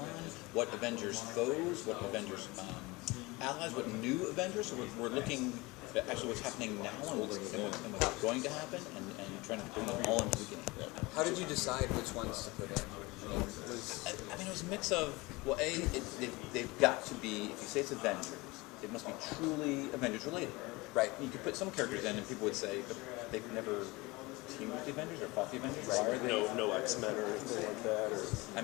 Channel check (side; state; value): right; quieter; 23.2 dB